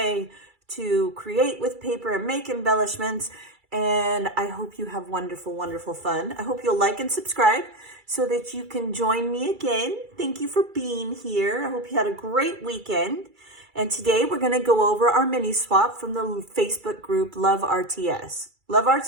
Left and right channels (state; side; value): late; left; 2.3 ms